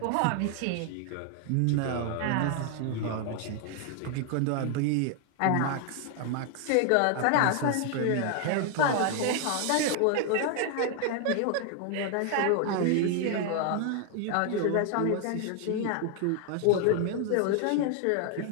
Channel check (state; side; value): different; both; correlation 0.00